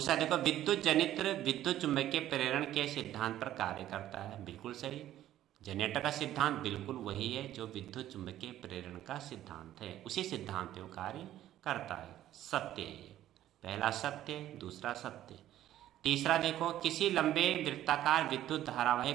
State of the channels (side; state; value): left; quieter; 12.9 dB